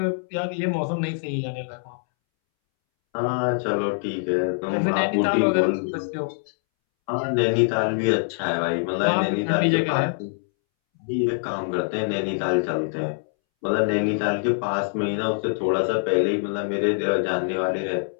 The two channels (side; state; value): right; silent; 62 dB below the other